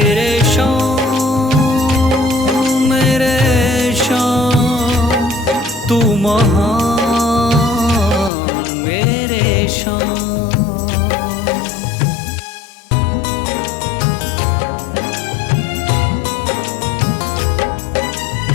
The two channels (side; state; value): right; drops out; at 8.3 s